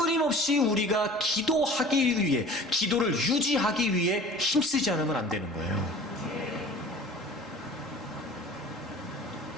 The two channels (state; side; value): normal; both; correlation 0.43